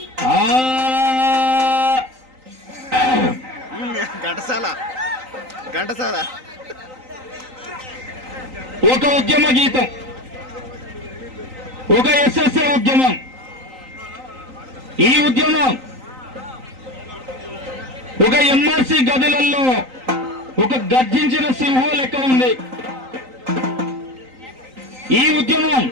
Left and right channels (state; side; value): late; left; 3.9 ms